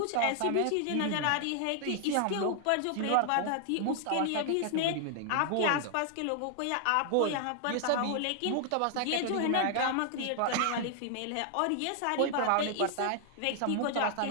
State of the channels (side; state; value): both; different; correlation 0.00